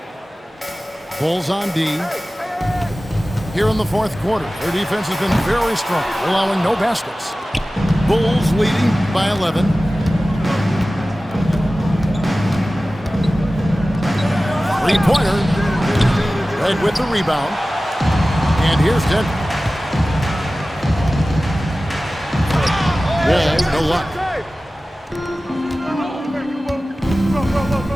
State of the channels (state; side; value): normal; both; correlation 0.96